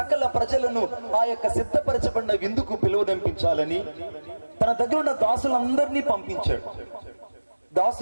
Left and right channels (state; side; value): inverted; both; correlation -1.00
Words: ప్రజలను ఆ యొక్క సిద్ధపరచబడిన విందుకు పిలువనంపించాలని తన దగ్గర ఉన్న దాసులందరినీ పంపించాడు.